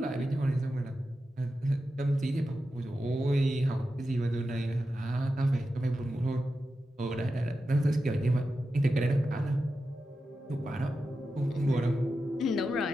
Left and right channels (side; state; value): both; normal; correlation 0.91